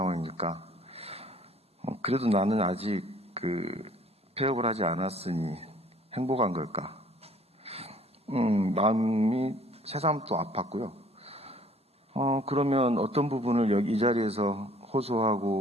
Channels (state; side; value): normal; both; correlation 0.56